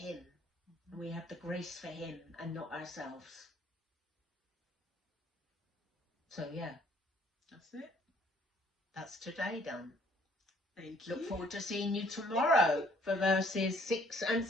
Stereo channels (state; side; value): normal; both; correlation 0.61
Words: And we have the grace for Him and not ourselves. So, yeah. That's it. That's today done. Thank you. Look forward to seeing you tomorrow for verses 6 and